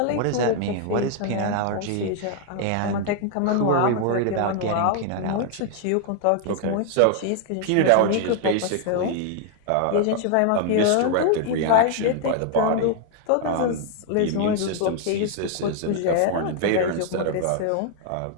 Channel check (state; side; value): different; both; correlation 0.00